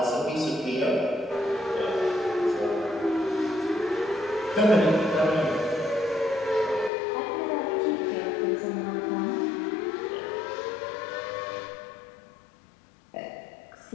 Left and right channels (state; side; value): drops out; right; at 6.9 s